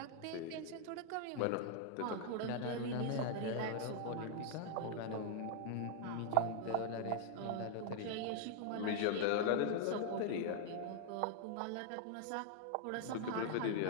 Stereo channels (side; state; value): both; different; correlation 0.00